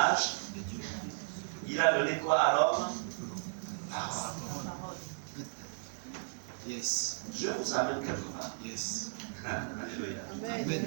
Il a donné quoi à l'homme? Parole. Yes. Je vous amène quelque part. Yes. Alléluia.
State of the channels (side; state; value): left; silent; digital silence